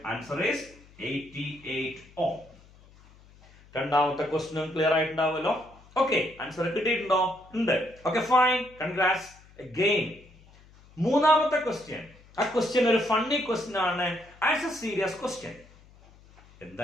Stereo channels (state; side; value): noise; left; hum, 25 dB below the sound